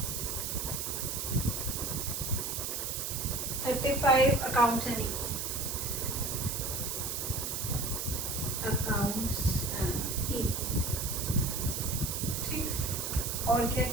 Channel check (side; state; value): right; noise; hiss, 3 dB below the sound